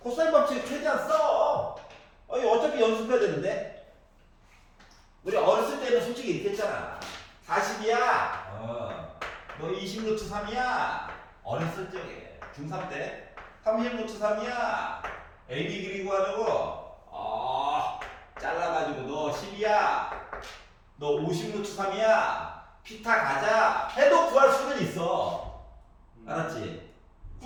법칙 최대한 써. 어차피 연습해야 되는데. 우리 어렸을 때는 솔직히 이렇게 했잖아. 40이야. 너 20 루트 3이야. 어렸을 적에 중3 때 30 루트 3이야. AB 길이 구하려고 잘라가지고 너 10이야. 너 50 루트 3이야. 피타 가자. 해도 구할 수는 있어. 알았지?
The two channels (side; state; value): both; identical; correlation 1.00